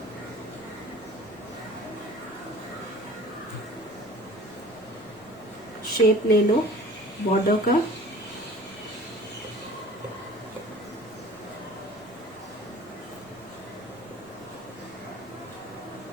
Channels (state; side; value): noise; right; rumble, 27 dB below the sound